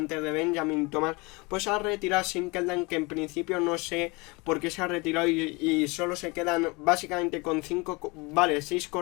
de Benjamin Thomas, pues se ha retirado Sinkeldam, que en principio no sé por qué se ha retirado, y solo se quedan básicamente con 6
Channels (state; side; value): quieter; right; 26.6 dB